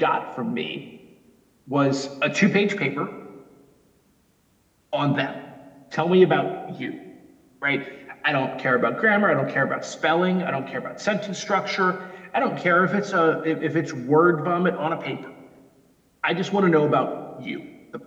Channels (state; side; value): identical; both; correlation 1.00